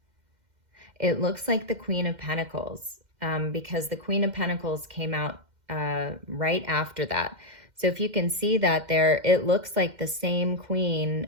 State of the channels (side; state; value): left; late; 2.1 ms